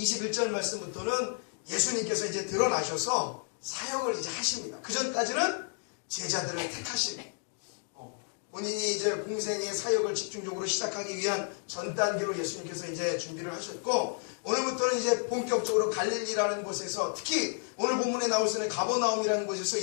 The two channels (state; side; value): silent; right; 56 dB below the other